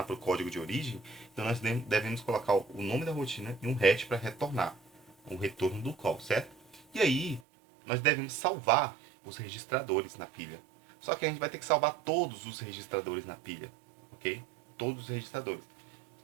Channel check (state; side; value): drops out; left; at 7.4 s